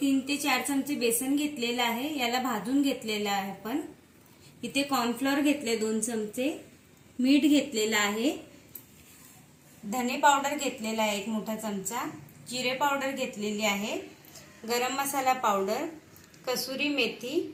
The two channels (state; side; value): identical; both; correlation 1.00